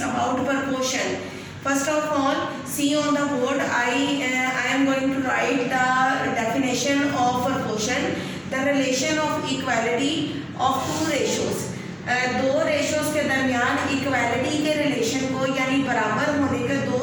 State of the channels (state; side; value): identical; both; correlation 1.00